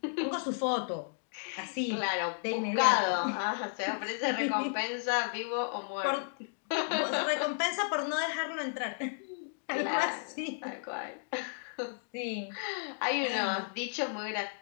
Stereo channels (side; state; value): right; silent; digital silence